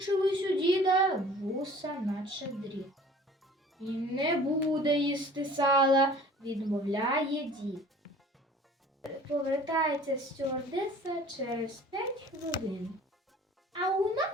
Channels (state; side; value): normal; both; correlation 0.47